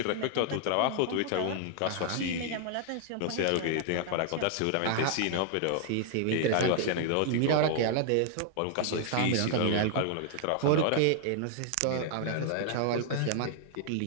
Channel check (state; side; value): different; both; correlation 0.00